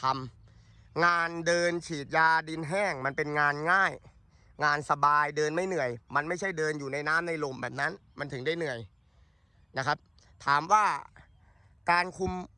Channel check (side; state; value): both; identical; correlation 1.00